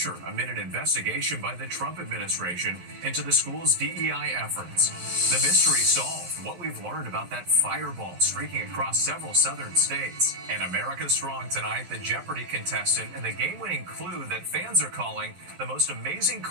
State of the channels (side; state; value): left; late; 11 ms